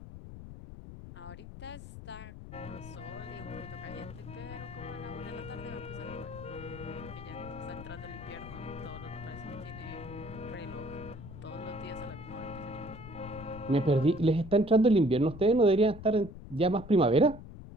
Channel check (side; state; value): left; noise; rumble, 13 dB below the sound